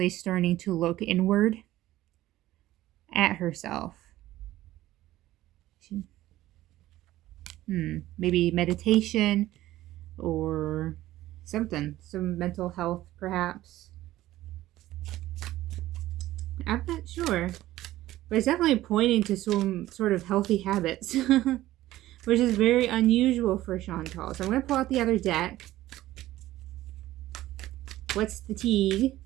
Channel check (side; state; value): left; quieter; 15.3 dB